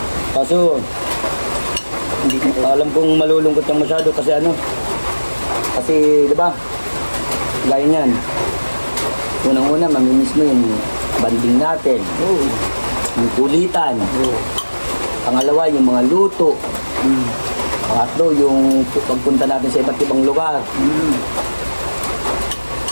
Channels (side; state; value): both; inverted; correlation -1.00